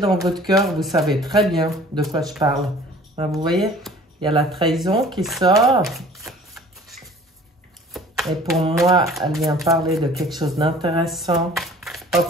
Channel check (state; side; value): normal; both; correlation 0.49